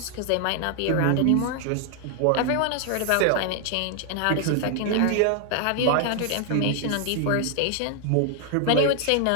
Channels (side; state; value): both; different; correlation 0.00